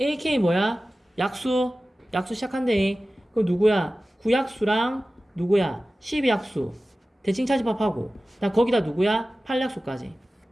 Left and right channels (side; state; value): both; normal; correlation 0.96